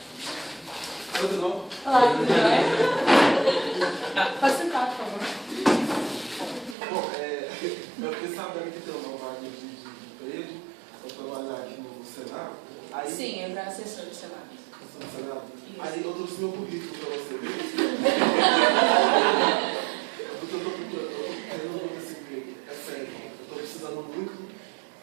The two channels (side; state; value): left; drops out; at 6.8 s